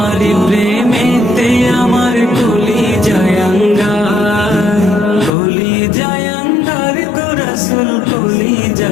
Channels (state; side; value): drops out; right; at 5.3 s